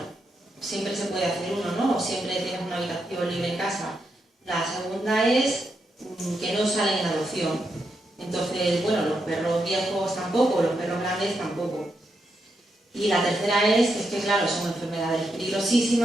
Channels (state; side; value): normal; both; correlation 0.83